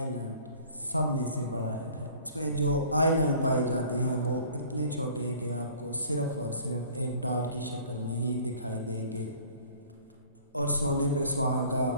सब में से बड़ा है। इसमें जो आइलैंड पाए जाते हैं वो इतने छोटे हैं कि आपको सिर्फ और सिर्फ एक डॉट की शक्ल में ही दिखाई देंगे। और सोने पे सुहागा,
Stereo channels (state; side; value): inverted; both; correlation -0.50